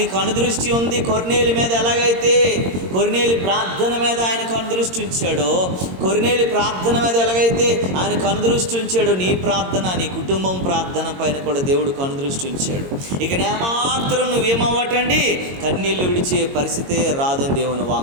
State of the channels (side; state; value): left; late; 22 ms